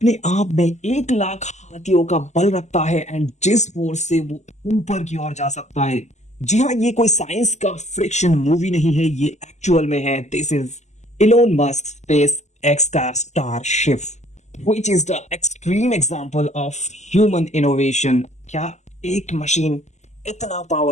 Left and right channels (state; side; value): late; right; 0.33 ms